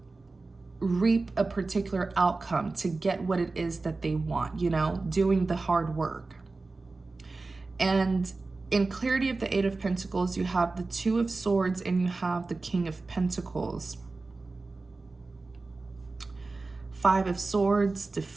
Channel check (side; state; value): left; quieter; 3.6 dB